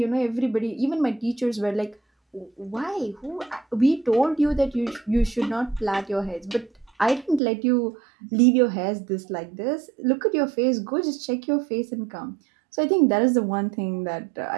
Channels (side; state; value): left; drops out; at 7.4 s